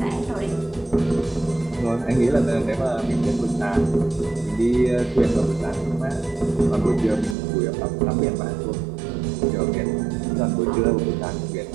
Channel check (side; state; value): left; drops out; at 7.4 s